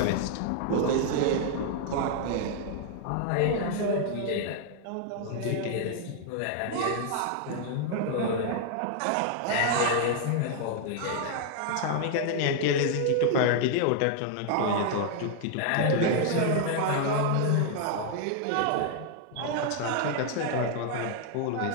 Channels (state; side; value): different; both; correlation 0.00